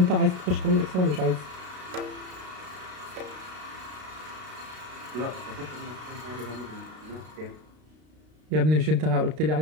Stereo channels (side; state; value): left; late; 33 ms